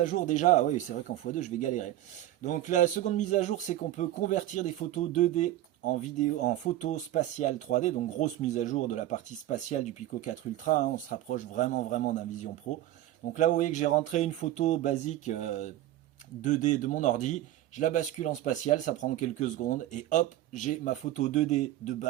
jour déjà. Ah oui, c'est vrai qu'en x2, je vais galérer. Donc la seconde mise à jour, c'est qu'on peut convertir des photos 2D en vidéo, en photo spatiale 3D. Donc grosse mise à jour de la partie spatiale du Pico 4 Ultra, hein. On se rapproche vraiment d'un Vision Pro. Donc là, vous voyez que j'ai rentré une photo basique 2D de mon ordi. Je la bascule en spatial, ça prend quelques secondes. Et hop, j'ai ma photo 2D de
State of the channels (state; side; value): quieter; left; 14.0 dB